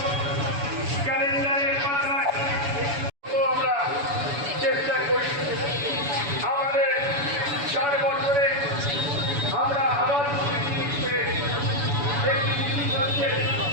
ক্যালেন্ডারের পাতায় আমরা চেষ্টা করি। আমাদের 4 বছরে আমরা আবার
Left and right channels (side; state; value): left; late; 7.0 ms